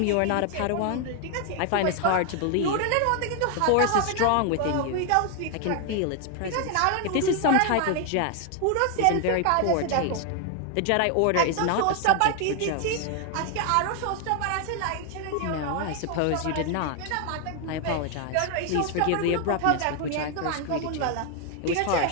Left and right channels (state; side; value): different; both; correlation 0.00